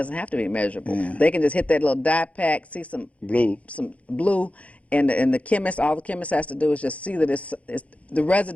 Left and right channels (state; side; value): late; right; 0.064 ms